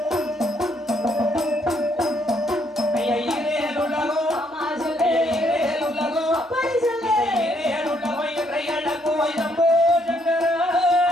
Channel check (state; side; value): normal; both; correlation 0.71